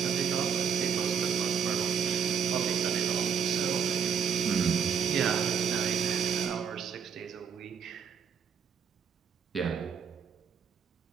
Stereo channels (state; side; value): quieter; left; 7.1 dB